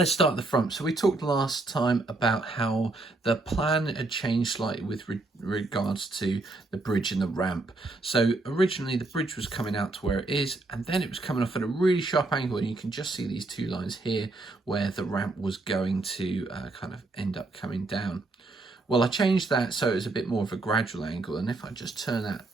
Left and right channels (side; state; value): left; quieter; 3.1 dB